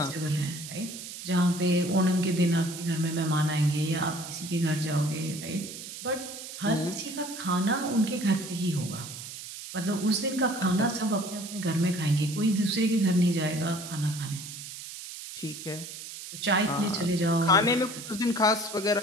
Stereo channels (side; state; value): right; noise; hiss, 11 dB below the sound